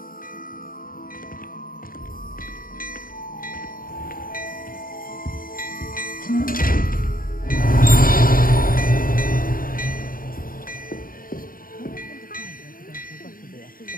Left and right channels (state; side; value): late; right; 0.41 ms